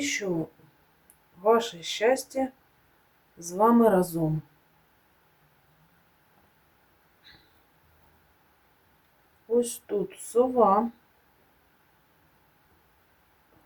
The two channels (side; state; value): both; identical; correlation 1.00